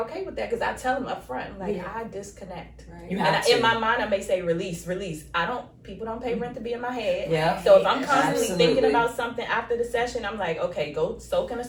okay with that because I tell them up front, like, I disconnect. You And have to. in my mind, I may say release. People don't pay rent to be in my head. Yeah. So if I'm constantly Absolutely. thinking about something after the session, I'm like, okay, go soak in a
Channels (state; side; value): identical; both; correlation 1.00